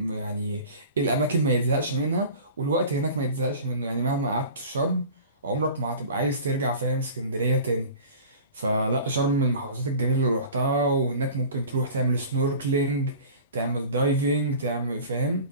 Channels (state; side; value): inverted; both; correlation -0.40